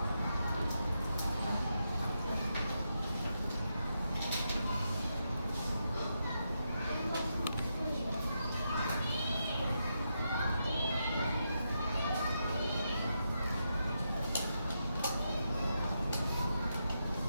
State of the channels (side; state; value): both; inverted; correlation -0.84